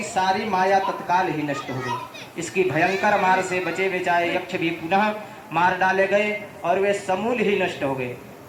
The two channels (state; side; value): identical; both; correlation 1.00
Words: सारी माया तत्काल ही नष्ट हो गई। इसकी भयंकर मार से बचे बचाए यक्ष भी पुनः मार डाले गए और वे समूल ही नष्ट हो गए।